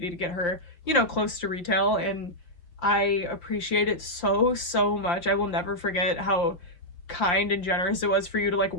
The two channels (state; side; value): late; right; 5.7 ms